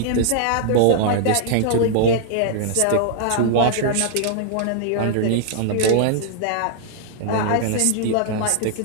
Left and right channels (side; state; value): both; different; correlation -0.01